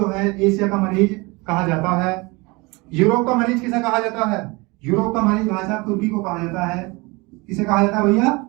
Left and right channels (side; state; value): left; quieter; 25.5 dB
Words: है एशिया का मरीज कहा जाता है। यूरोप का मरीज किसे कहा जाता है? यूरोप का मरीज भाई साहब तुर्की को कहा जाता है। किसे कहा जाता है भैया?